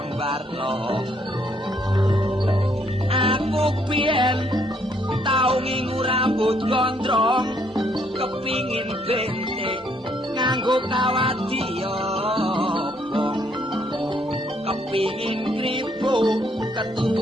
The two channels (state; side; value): normal; both; correlation 0.69